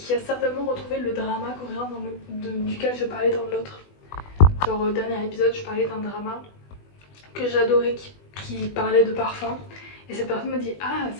a certainement retrouvé le drama coréen duquel je parlais dans l'autre. Genre au dernier épisode je parlais d'un drama que j'adorais qui parlait de parfum. Et cette personne me dit ah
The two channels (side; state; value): right; late; 20 ms